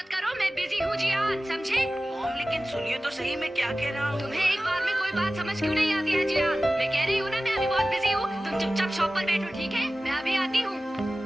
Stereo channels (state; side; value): normal; both; correlation 0.96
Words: करो, मैं बिजी हूँ जियान, समझे? मॉम लेकिन सुनिए तो सही, मैं क्या कह रहा हूँ। तुम्हें एक बार में कोई बात समझ क्यों नहीं आती है जियान? मैं कह रही हूँ ना, मैं अभी बहुत बिजी हूँ। तुम चुपचाप शॉप पर बैठो, ठीक है? मैं अभी आती हूँ।